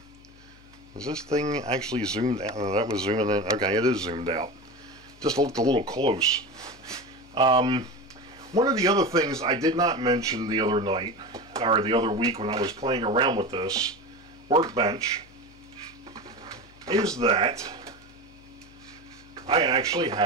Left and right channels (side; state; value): left; noise; hum, 25 dB below the sound